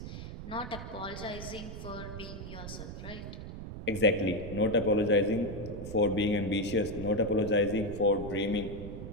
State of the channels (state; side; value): noise; right; rumble, 9 dB below the sound